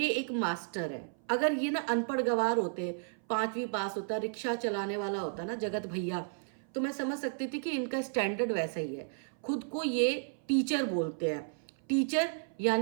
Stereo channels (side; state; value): left; silent; 55 dB below the other